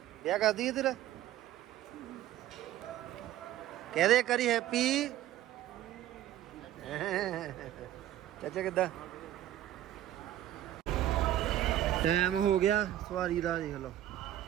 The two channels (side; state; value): left; quieter; 12.8 dB